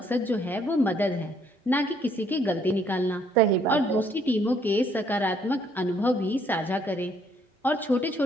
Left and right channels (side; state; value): both; normal; correlation 0.66